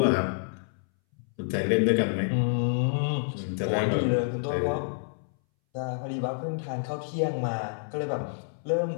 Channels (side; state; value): right; silent; 59 dB below the other